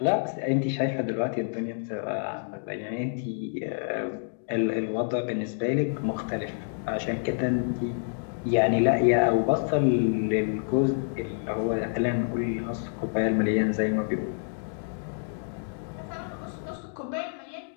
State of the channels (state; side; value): silent; right; digital silence